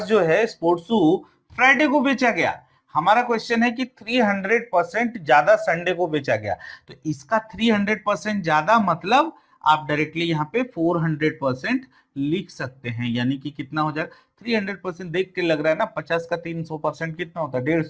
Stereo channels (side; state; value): both; identical; correlation 1.00